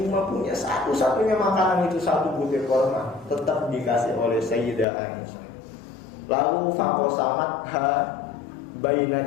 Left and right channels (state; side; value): drops out; right; at 4.9 s